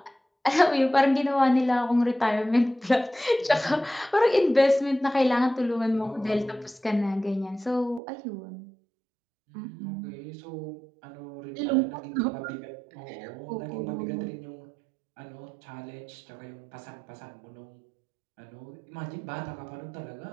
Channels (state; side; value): drops out; left; at 8.0 s